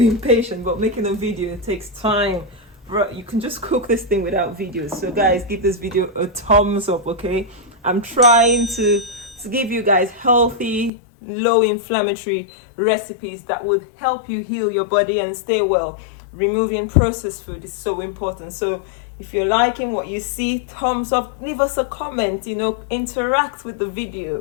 impatient, but making a video, it takes time. Bro, you can just cook this thing without videos. So guys, give this video a thumbs up, okay? I'm trying to give you guys healthy, low inflammatory recipes that would help you heal your body and stay well. Removing processed food is so important. So If you're liking what you see, thumbs up, leave us a comment, you know, interact with the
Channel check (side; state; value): right; drops out; at 10.9 s